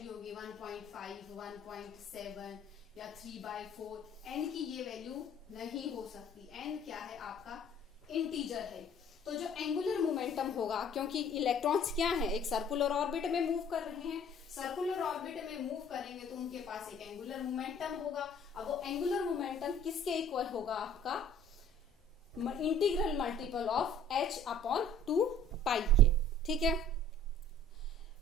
होगी 1.5, 1.7 या 3/4। n की ये वैल्यू नहीं हो सकती। n क्या है, आपका इंटीजर है। तो जो एंगुलर मोमेंटम होगा, क्योंकि इलेक्ट्रॉन्स क्या है, एक सर्कुलर ऑर्बिट में मूव कर रहे हैं, सर्कुलर ऑर्बिट में मूव करेंगे तो उनके पास एक एंगुलर मोमेंटम होगा। अब वो एंगुलर मोमेंटम किसके इक्वल होगा, आपका इंटीग्रल मल्टीपल ऑफ h/2 पाई के। ठीक है,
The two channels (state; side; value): normal; both; correlation 0.52